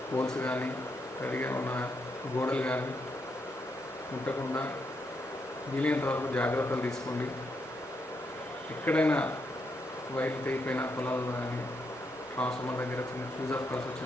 పోల్స్ కానీ తడిగా ఉన్న గోడలు కానీ ముట్టకుండా వీలైనంత వరకు జాగ్రత్తలు తీసుకోండి. ఎక్కడైనా వైర్లు తెగిపోయిన పొలాల్లో కానీ ట్రాన్స్ఫార్మర్ దగ్గర చిన్న ఫ్యూజ్ ఆఫ్ కాల్స్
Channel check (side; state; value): both; normal; correlation 0.80